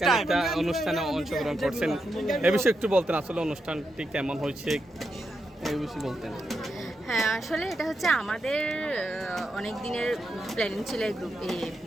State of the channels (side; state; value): both; normal; correlation 0.85